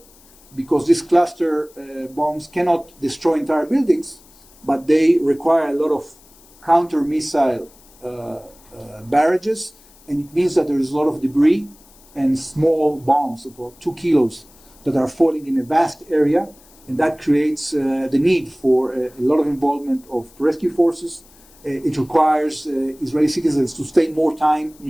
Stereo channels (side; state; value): left; noise; hiss, 27 dB below the sound